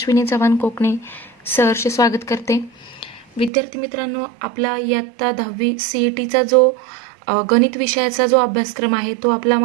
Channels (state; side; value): drops out; left; at 3.5 s